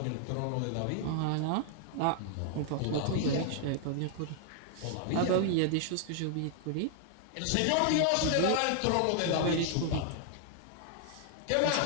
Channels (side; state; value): both; different; correlation 0.00